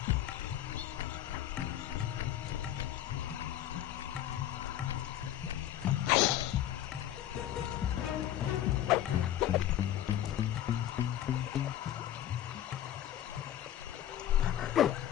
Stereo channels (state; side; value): quieter; right; 11.9 dB